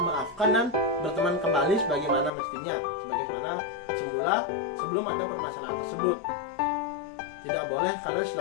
dan berteman kembali sebagaimana mestinya, sebagaimana semula sebelum ada permasalahan tersebut. Tidak boleh kalian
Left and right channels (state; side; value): drops out; right; at 2.3 s